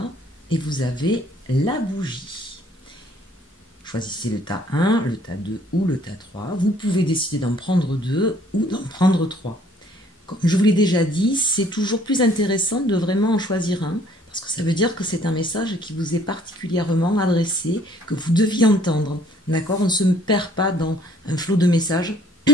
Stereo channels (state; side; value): normal; both; correlation 0.60